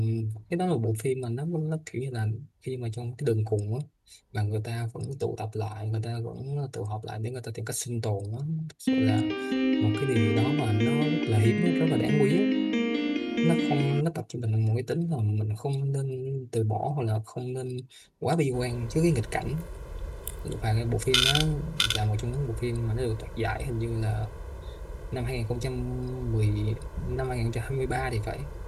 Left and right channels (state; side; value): identical; both; correlation 1.00